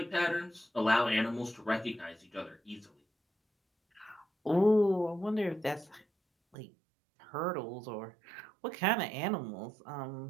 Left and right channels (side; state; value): left; drops out; at 6.6 s